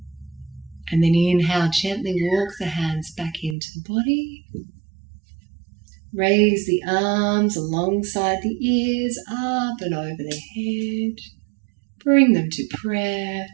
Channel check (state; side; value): drops out; left; at 3.6 s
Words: And then inhale, gently walk the hands back into the body. Raise the arms alongside the ears, up and over the head. Bring them to prayer.